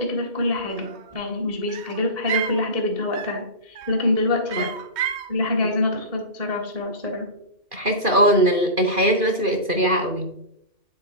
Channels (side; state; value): left; late; 2.4 ms